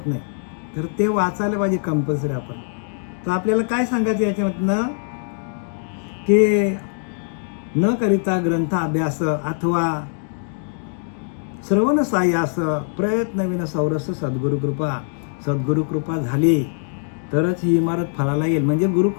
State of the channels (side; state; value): right; silent; digital silence